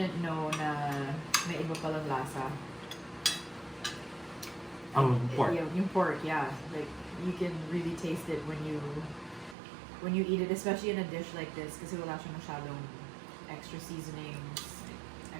know na may iba palang lasa. Ang pork. Yung pork, yeah. Like, you can really taste it when you eat it, especially in a dish like this, kasi wala siya masyadong extra seasonings. I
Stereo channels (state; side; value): drops out; left; at 9.6 s